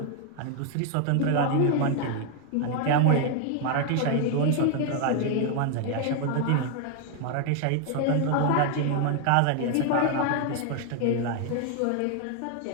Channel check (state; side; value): different; both; correlation 0.00